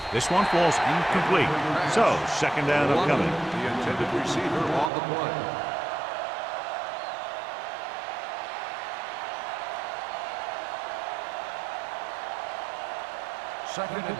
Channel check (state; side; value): drops out; left; at 4.9 s